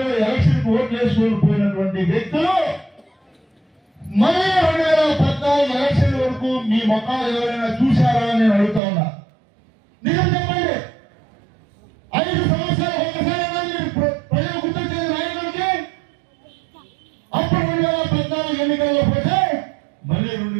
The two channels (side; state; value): left; drops out; at 8.8 s